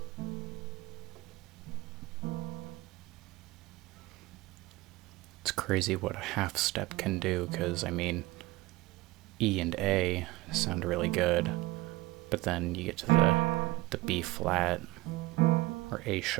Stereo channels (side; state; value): left; quieter; 19.6 dB